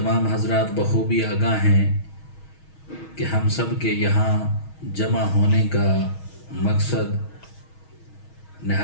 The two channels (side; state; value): right; late; 6.3 ms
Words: حضرات بخوبی آگاہ ہیں کہ ہم سب کے یہاں جمع ہونے کا مقصد